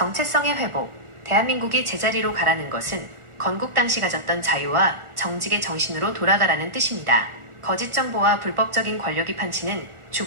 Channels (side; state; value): left; late; 1.4 ms